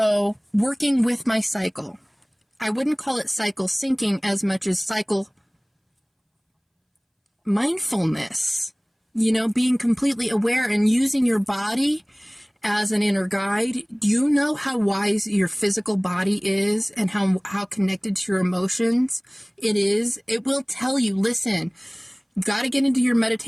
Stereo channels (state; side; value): identical; both; correlation 1.00